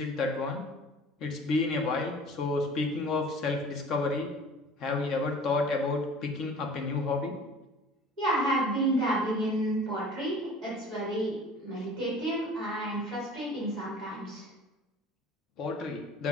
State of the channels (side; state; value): both; normal; correlation 0.45